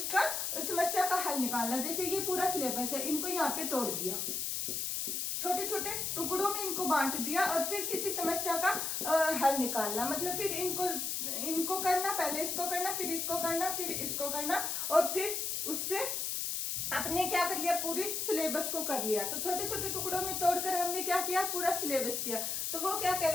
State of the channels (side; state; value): left; noise; hiss, 1 dB below the sound